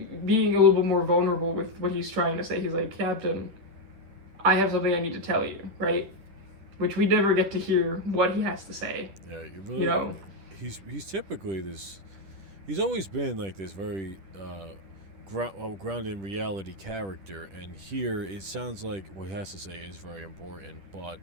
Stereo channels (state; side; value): late; left; 10 ms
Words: a little bit more vulnerable with what he's trying to say. He's like, Captain, I have something I need to tell you, right? Which we never get to hear what he has to say. Yeah, you know, he's typically this. He's always been like this very grounded in reality character, and here it sounds like what he has to say is very important, but